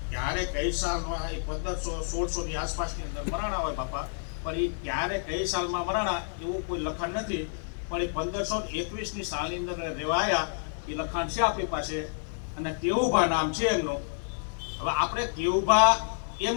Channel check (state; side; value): silent; right; 58 dB below the other